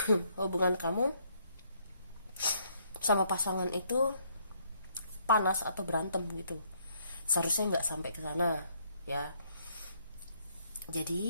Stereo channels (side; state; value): both; inverted; correlation -0.69